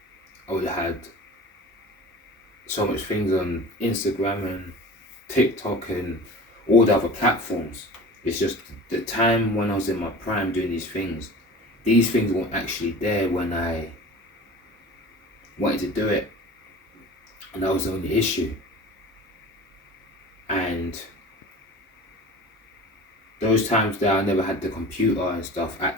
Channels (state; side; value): normal; both; correlation 0.38